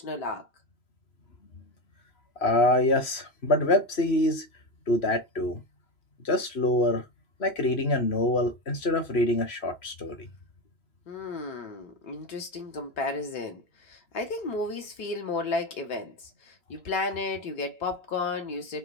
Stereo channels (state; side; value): late; right; 3.0 ms